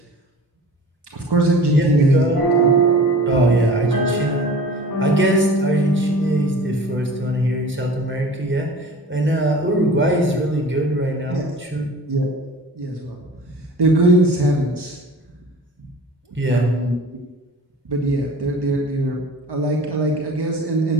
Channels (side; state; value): both; normal; correlation 0.42